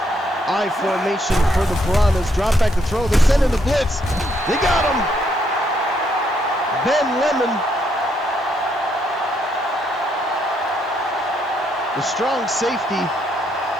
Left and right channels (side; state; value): both; normal; correlation 0.74